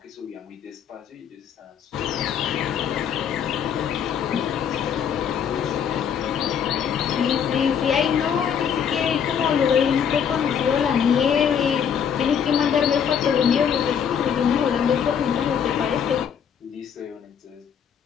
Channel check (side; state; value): right; quieter; 7.9 dB